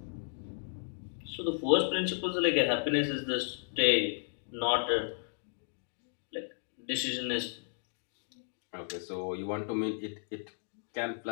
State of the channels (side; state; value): right; silent; digital silence